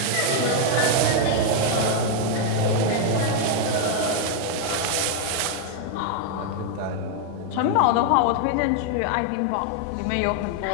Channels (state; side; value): different; both; correlation 0.00